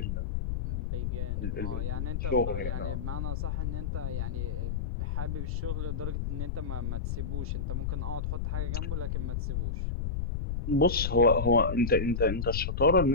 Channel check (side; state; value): left; noise; rumble, 1 dB below the sound